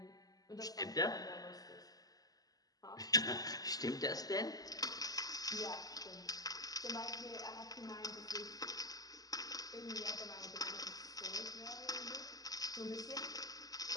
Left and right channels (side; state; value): right; late; 0.18 ms